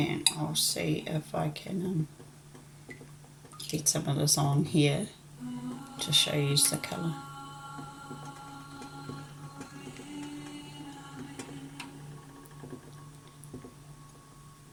I'll see if I can get some of this on here to show you the colour.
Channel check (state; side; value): identical; both; correlation 1.00